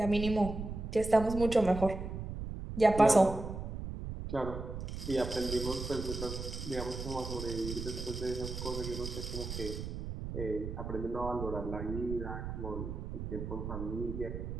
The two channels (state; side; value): noise; right; rumble, 6 dB below the sound